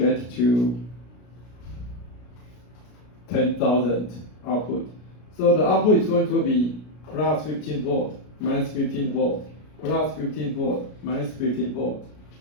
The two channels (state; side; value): late; right; 33 ms